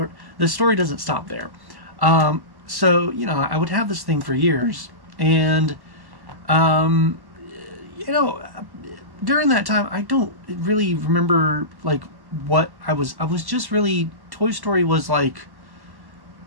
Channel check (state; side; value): late; left; 1.1 ms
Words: The story doesn't stop there. So I would have this thing for years, and during that time, I don't really remember like what I was just really, Toy Story was like